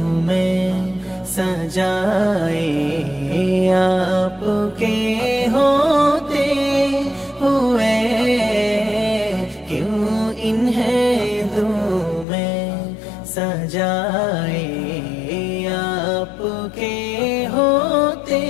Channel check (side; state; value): right; drops out; at 12.2 s